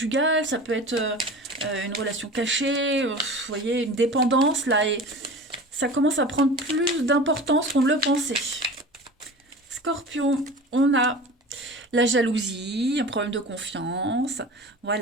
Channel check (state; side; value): normal; both; correlation 0.36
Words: ça peut être une relation cachée, vous voyez, une dépendance, là, et ça commence à prendre plus d'importance qu'on ne le pensait. Scorpion, on a la jalousie, un problème de confiance,